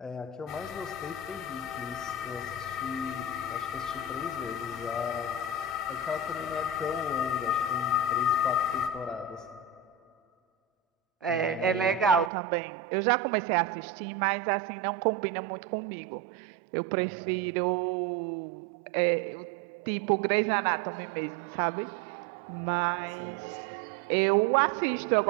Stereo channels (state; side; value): drops out; left; at 12.3 s